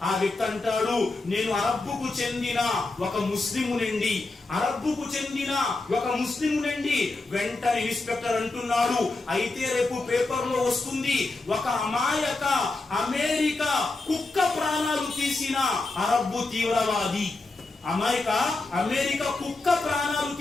ఆ వ్యక్తి అంటాడు, నేను అరబ్బుకు చెందిన ఒక ముస్లిమునండి. వెంటనే ఇన్స్పెక్టర్ అంటున్నాడు, అయితే రేపు పేపర్ లో వస్తుంది ఒక అమాయక అమెరికా కుక్క ప్రాణాలు తీసిన అరబ్బు తీవ్రవాది. అమెరికా కుక్క ప్రాణాలు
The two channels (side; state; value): right; quieter; 3.3 dB